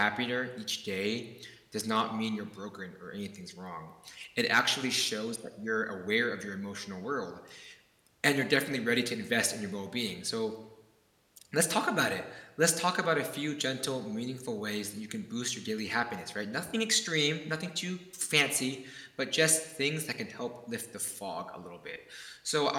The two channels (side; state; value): both; identical; correlation 1.00